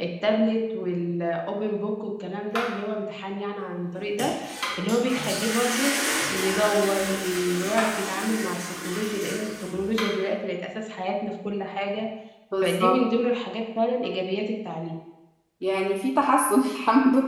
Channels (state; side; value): identical; both; correlation 1.00